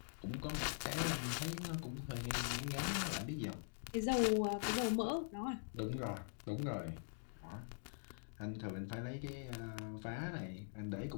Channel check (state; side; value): silent; right; digital silence